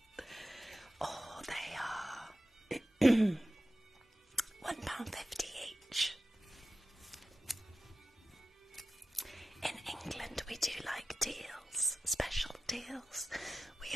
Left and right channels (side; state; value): both; normal; correlation 0.94